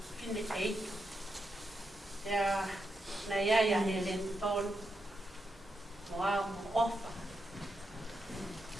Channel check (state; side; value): normal; both; correlation 0.84